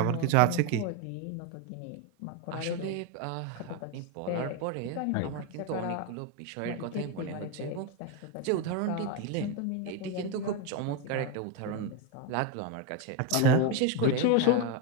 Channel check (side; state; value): both; different; correlation 0.02